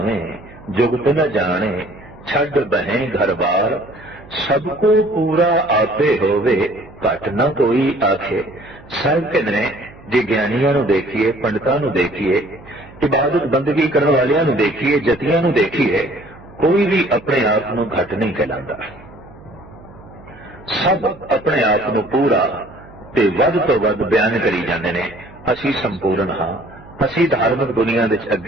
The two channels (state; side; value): noise; right; hum, 21 dB below the sound